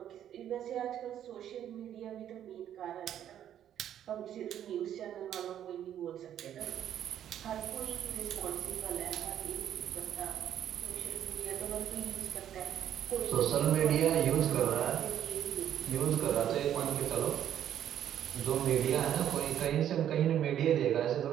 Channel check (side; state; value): left; quieter; 10.5 dB